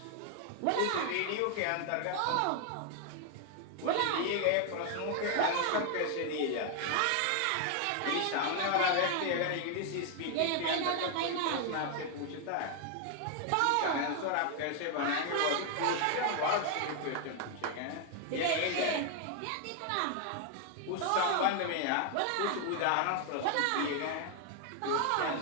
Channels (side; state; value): both; different; correlation 0.00